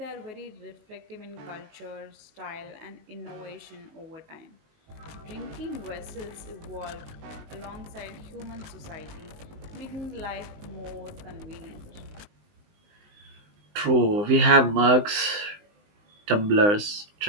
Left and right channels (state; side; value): late; left; 19 ms